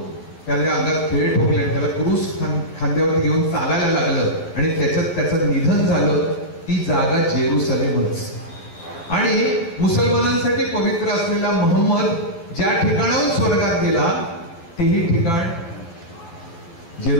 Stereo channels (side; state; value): right; late; 12 ms